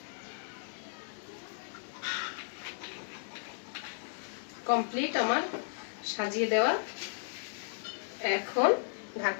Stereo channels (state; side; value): silent; right; 55 dB below the other